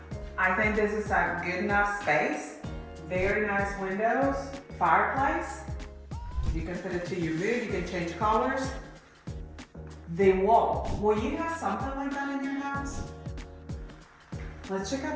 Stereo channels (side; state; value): both; identical; correlation 1.00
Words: I think this is a good enough space. Very nice windows, fireplace. You can put it to your mood, you can change colors. The wall, will you have something like that in your house? Let's check out